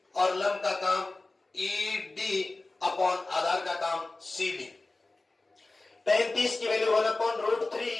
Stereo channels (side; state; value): right; quieter; 3.2 dB